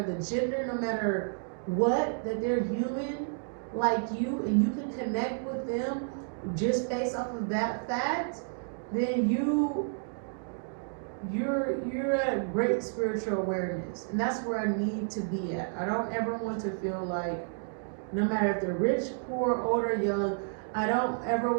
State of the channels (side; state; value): left; silent; digital silence